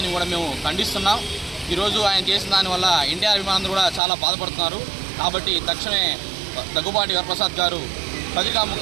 కూడా మేము ఖండిస్తున్నాం. ఈరోజు ఆయన చేసిన దానివల్ల ఎన్టీఆర్ అభిమానులు కూడా చాలా బాధపడుతున్నారు. కాబట్టి తక్షణమే దగ్గుబాటి వరప్రసాద్ గారు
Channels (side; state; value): left; drops out; at 4.0 s